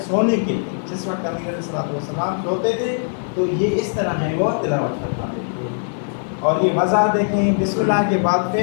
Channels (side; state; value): right; silent; 65 dB below the other